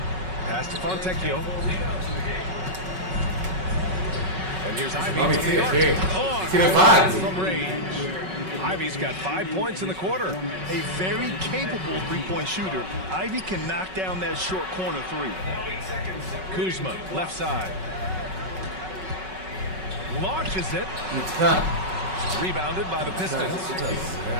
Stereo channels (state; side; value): late; left; 5.4 ms